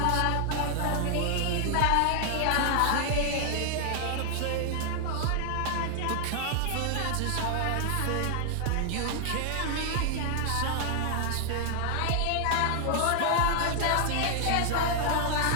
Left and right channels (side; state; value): both; different; correlation 0.00